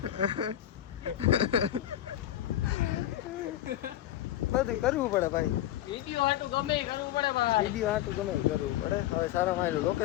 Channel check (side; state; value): right; quieter; 12.7 dB